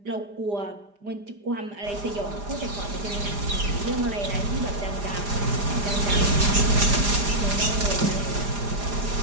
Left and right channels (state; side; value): late; left; 4.9 ms